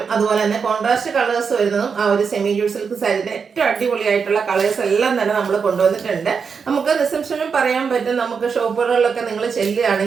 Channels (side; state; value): left; quieter; 5.9 dB